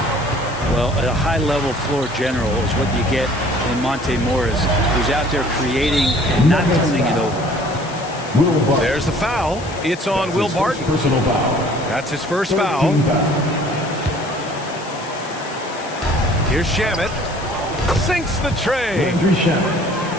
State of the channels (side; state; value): left; noise; hiss, 17 dB below the sound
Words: Well, a high-level floor general is what you get in Monte Morris, who's out there creating and not turning it over. There's the foul. It's on Will Barton. Personal foul. That's his first foul. Here's Shamet. Sinks the tray.